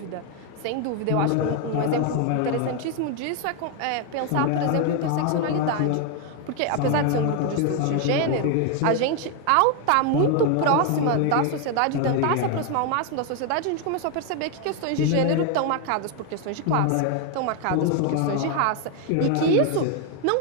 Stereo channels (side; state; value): both; different; correlation 0.01